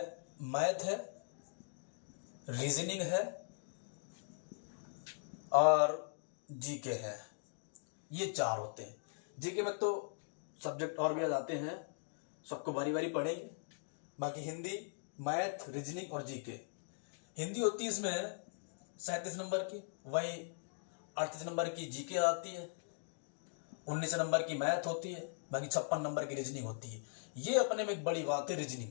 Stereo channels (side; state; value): right; silent; digital silence